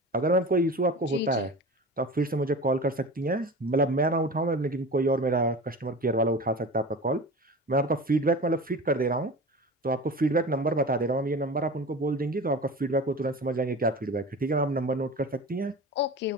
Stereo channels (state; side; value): normal; both; correlation 0.33